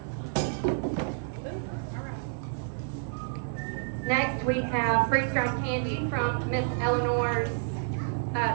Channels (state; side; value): silent; left; 58 dB below the other